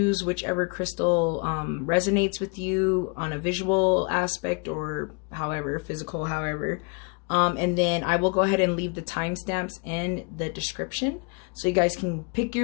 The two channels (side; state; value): right; quieter; 33.7 dB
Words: whichever crystal resonates with you on a visual aspect or however, physical, however. And then I will go ahead and leave the timestamps in the description so you guys can pick